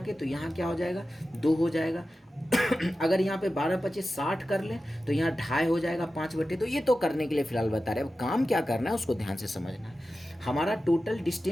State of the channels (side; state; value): both; normal; correlation 0.93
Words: तो यहाँ क्या हो जाएगा 2 हो जाएगा। अगर यहाँ पे 12 25 60 कर लें तो यहाँ 2.5 हो जाएगा 5/। तो ये तो करने के लिए फिलहाल बता रहे हैं, अब काम क्या करना है उसको ध्यान से समझना है। हमारा टोटल